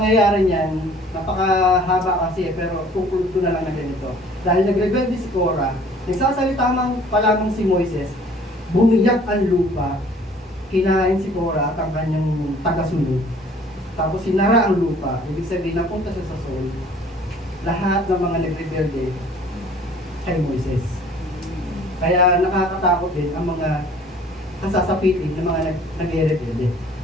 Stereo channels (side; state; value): both; normal; correlation 0.53